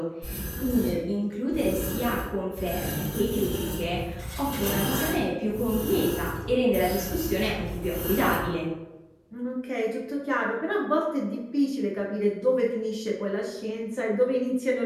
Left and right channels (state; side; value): identical; both; correlation 1.00